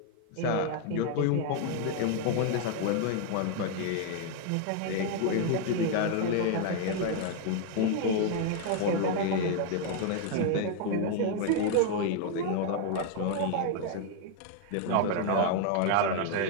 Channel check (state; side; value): different; both; correlation 0.00